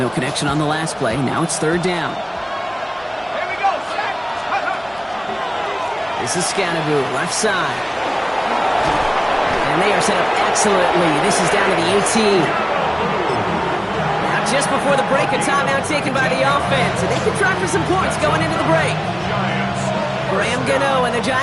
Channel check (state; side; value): identical; both; correlation 1.00